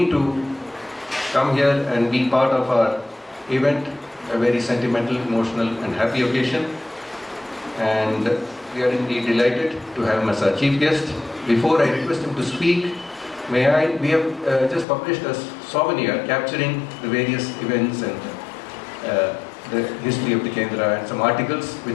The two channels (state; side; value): drops out; right; at 14.9 s